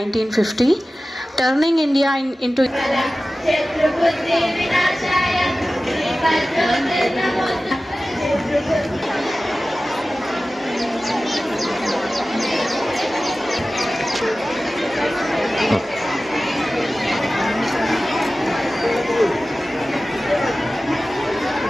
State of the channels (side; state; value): both; normal; correlation 0.96